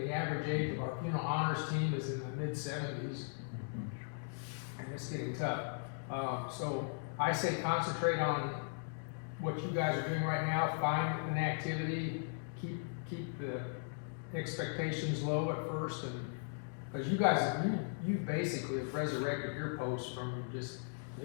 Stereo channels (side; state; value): right; silent; digital silence